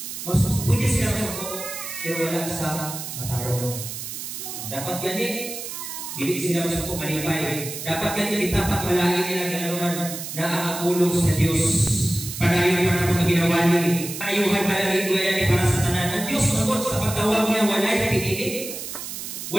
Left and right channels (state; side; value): noise; right; hiss, 8 dB below the sound